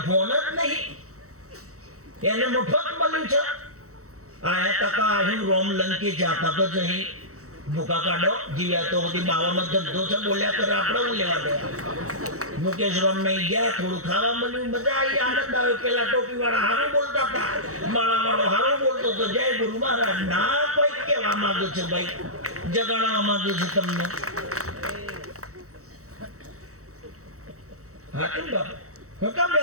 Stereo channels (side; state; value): left; late; 0.65 ms